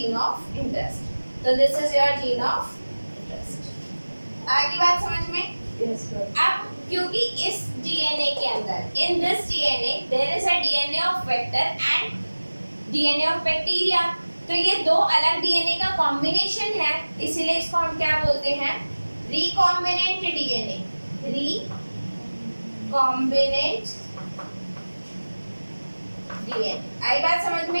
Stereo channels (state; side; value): inverted; both; correlation -1.00